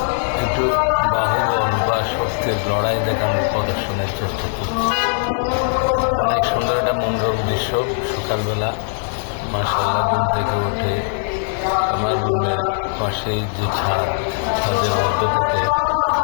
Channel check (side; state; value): right; silent; 66 dB below the other